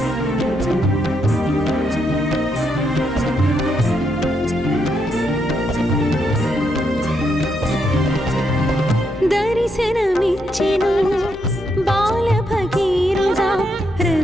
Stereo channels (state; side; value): noise; left; hum, 20 dB below the sound